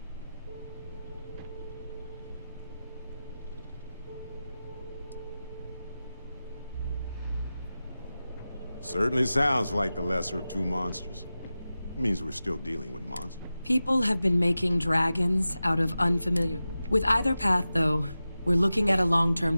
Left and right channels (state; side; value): inverted; both; correlation -0.94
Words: Certainly sounds like the lesser of two monsters. It means we're still dealing with monsters. People have been making dragons out of unfamiliar... With either path, though, we're looking at a